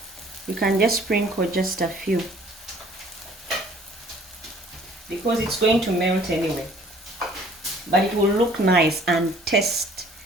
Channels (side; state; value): both; normal; correlation 0.55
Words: you can just sprinkle just a few, because it's going to melt anyway. But it will look nice and taste